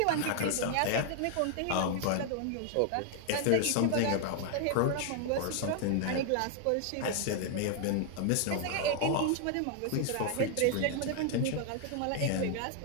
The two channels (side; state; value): both; different; correlation 0.00